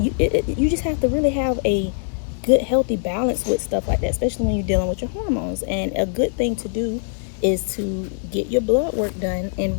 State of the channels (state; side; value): silent; right; digital silence